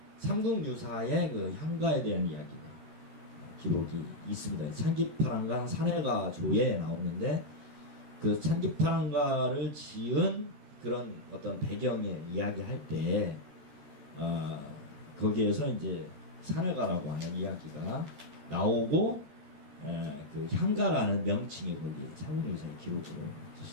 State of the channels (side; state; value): left; late; 14 ms